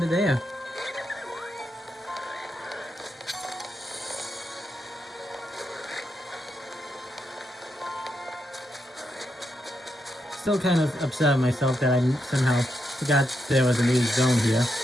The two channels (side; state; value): both; normal; correlation 0.83